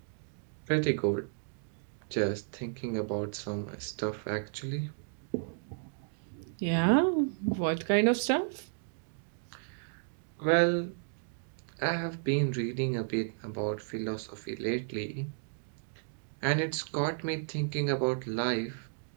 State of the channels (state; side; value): silent; left; digital silence